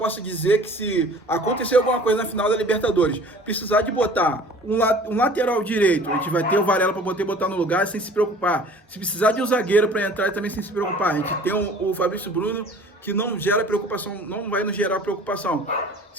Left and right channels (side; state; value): both; normal; correlation 0.47